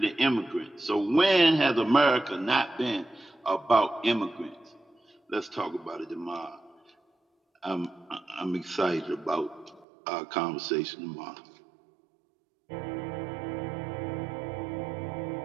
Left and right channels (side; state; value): left; drops out; at 9.9 s